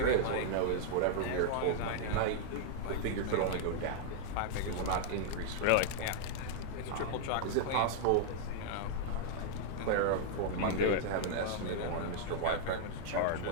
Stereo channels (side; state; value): both; different; correlation -0.01